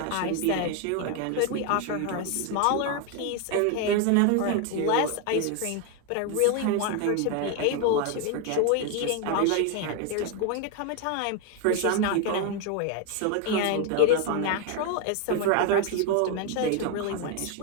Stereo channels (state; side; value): different; both; correlation 0.01